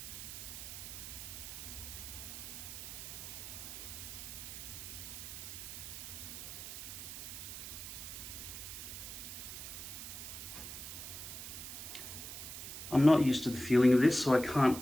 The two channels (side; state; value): right; noise; hiss, 8 dB below the sound